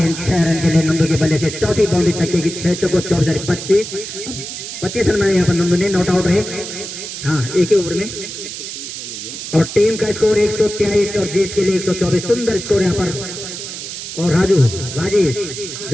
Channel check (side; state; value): right; noise; hiss, 8 dB below the sound